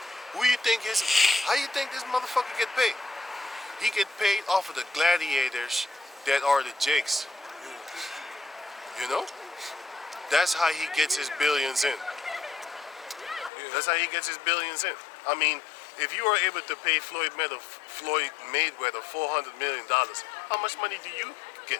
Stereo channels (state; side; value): drops out; right; at 13.5 s